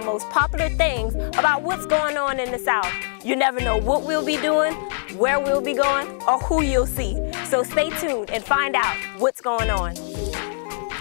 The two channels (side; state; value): right; silent; digital silence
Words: most popular things about what's going on in the South. You never know what we'll be doing, where we'll be going, or who you'll see. So stay tuned and find out what's going on.